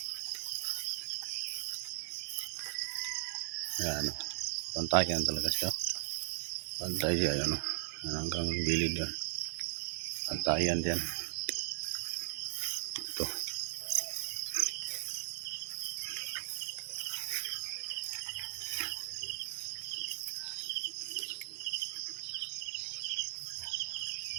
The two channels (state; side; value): silent; left; 53 dB below the other